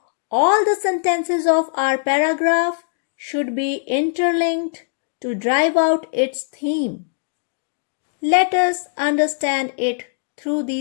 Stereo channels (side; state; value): right; silent; digital silence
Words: All the sentences of our paragraph should be interlinked to drive out its theme. Let us understand it through